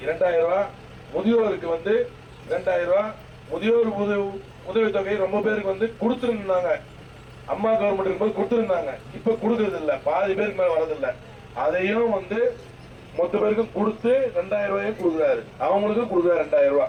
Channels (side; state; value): both; identical; correlation 1.00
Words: 2000 ரூபாய், முதியோருக்கு வந்து 2000 ரூபாய். முதியோர் உதவித்தொகை ரொம்ப பேருக்கு வந்து கொடுத்துருந்தாங்க. அம்மா கவர்மெண்ட் இருக்கும்போது கொடுத்துருந்தாங்க. இப்ப கொடுக்கறது இல்ல, பாதி பேருக்கு மேல வரதில்லை. அதையும் வந்து மொத்த பேருக்கும் கொடுத்து 2000 ரூபாயும் கொடுக்குறாரு. அவங்களுக்கும் கொடுக்குறாரு 2000